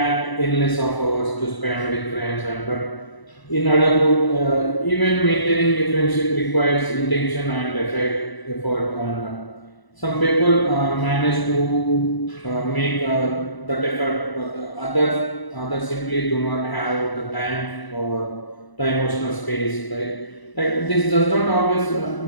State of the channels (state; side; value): late; right; 1.0 ms